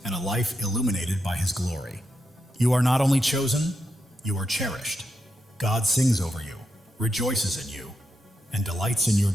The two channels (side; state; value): both; normal; correlation 0.85